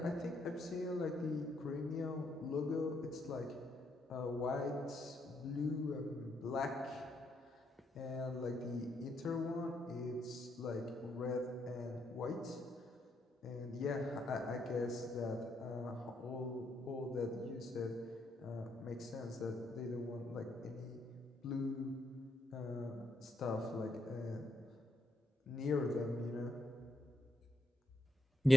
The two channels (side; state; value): both; normal; correlation 0.78